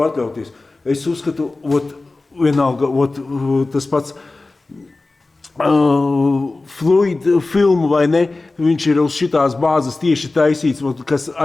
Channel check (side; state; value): right; quieter; 3.3 dB